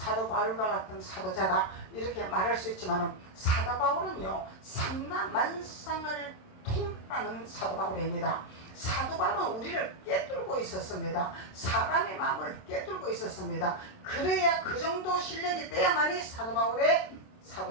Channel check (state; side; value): late; right; 27 ms